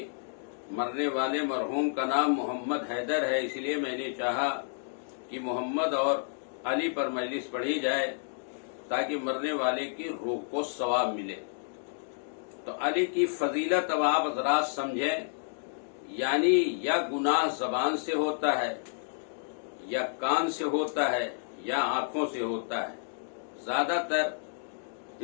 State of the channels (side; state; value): right; silent; digital silence